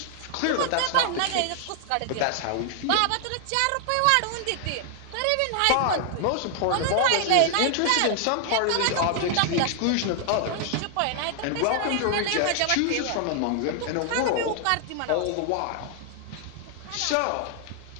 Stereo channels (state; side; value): different; both; correlation 0.00